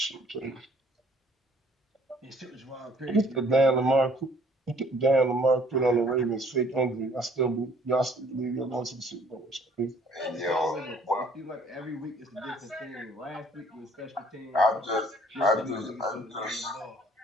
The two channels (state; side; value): normal; both; correlation 0.59